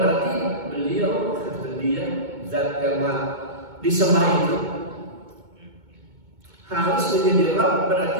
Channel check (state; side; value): late; left; 2.2 ms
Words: beliau, dia zat yang disembah itu harus menjadi Rabb, berarti